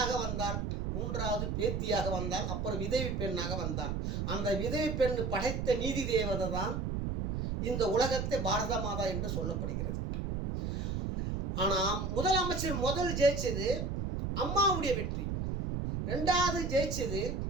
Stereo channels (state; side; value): noise; right; rumble, 2 dB below the sound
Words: வந்தாள், 3வது பேத்தியாக வந்தாள், அப்புறம் விதவி பெண்ணாக வந்தாள். அந்த விதவி பெண் படைத்த நீதி தேவதை தான் இந்த உலகத்தை பாரத மாதா என்று சொல்லப்படுகிறது. ஆனால் முதலமைச்சர் முதல் ஜெயிச்சது அம்மாவுடைய வெற்றி. 2வது ஜெயிச்சது